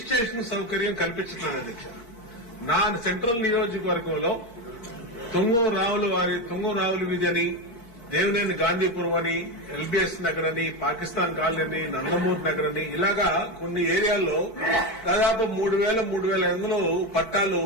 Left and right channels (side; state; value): right; late; 4.4 ms